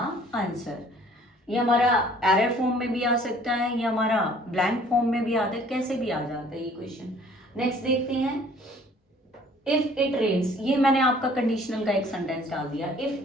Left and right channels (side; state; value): both; normal; correlation 0.55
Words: answer. ये हमारा एरर फॉर्म में भी आ सकता है, ये हमारा ब्लैंक फॉर्म में भी आता है, कैसे भी आ जाता है ये क्वेश्चन। नेक्स्ट देखते हैं, इफ इट रेन्स, ये मैंने आपका कंडीशनल का एक सेंटेंस डाल दिया,